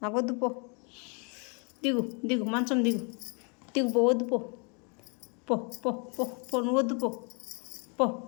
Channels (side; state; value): right; quieter; 35.1 dB